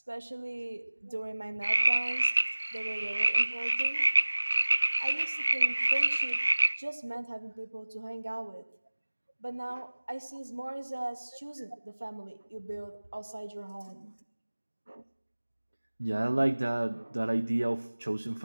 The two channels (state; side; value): inverted; both; correlation -1.00